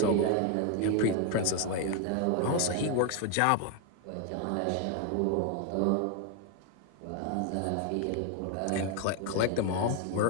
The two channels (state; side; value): different; both; correlation 0.01